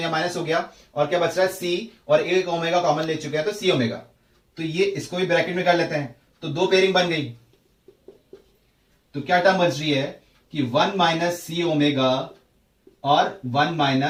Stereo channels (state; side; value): identical; both; correlation 1.00